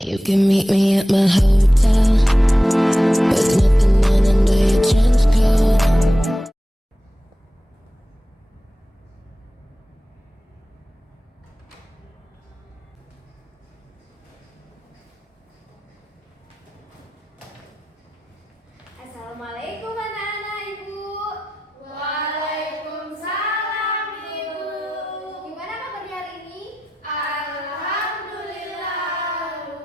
You can meet me at my hotel with nothing on under your trench coat. Assalamualaikum anak-anak Ibu. Waalaikumsalam Ibu. Gimana kabarnya hari ini? Alhamdulillah,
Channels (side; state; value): both; normal; correlation 0.93